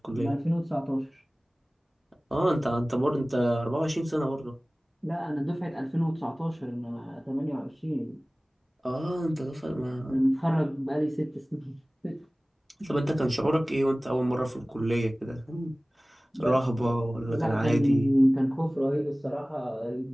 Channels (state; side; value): normal; both; correlation 0.98